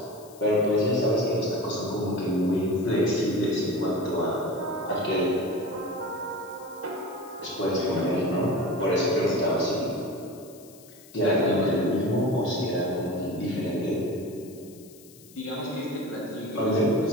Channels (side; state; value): left; noise; hiss, 23 dB below the sound